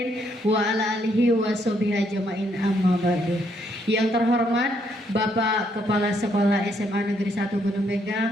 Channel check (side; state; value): both; normal; correlation 0.72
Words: wa ala alihi wa sahbihi ajmain, amma ba'du. Yang terhormat Bapak Kepala Sekolah SMA Negeri 1 Gunung